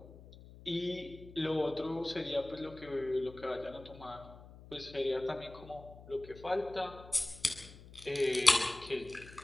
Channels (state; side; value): noise; left; hum, 18 dB below the sound